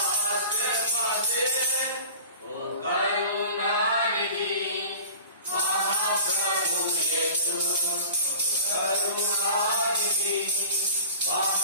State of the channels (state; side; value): inverted; both; correlation -0.41